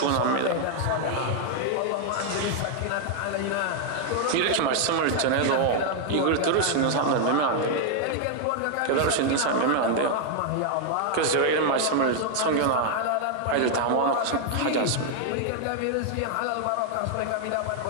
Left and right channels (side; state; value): both; different; correlation 0.00